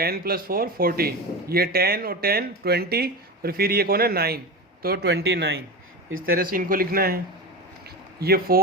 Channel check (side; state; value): both; normal; correlation 0.24